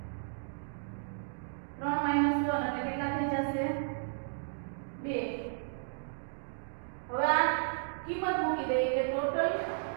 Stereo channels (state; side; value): silent; left; digital silence